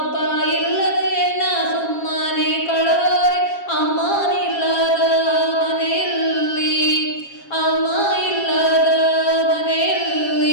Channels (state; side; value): late; right; 7.3 ms